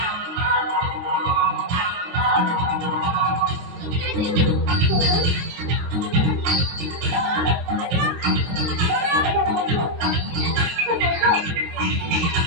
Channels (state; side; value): late; left; 23 ms